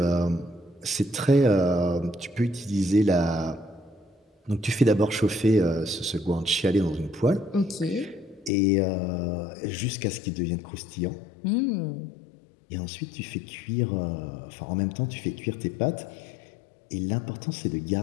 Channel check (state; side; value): drops out; right; at 8.5 s